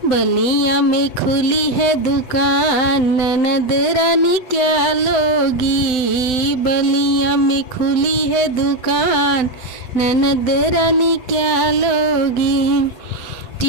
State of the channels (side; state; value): right; late; 7.8 ms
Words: बलिया में खुली है दुकान, ननद रानी क्या लोगी। बलिया में खुली है दुकान, ननद रानी क्या लोगी।